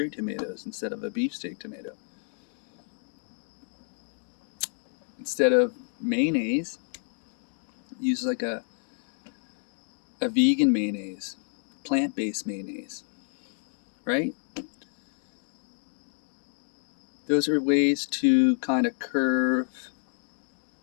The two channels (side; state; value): right; silent; 58 dB below the other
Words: tomatoes instead of a beefsteak tomato. Instead of mayonnaise, use like a vegan mayonnaise, plant-based mayonnaise, right? Those are ways to kind of curve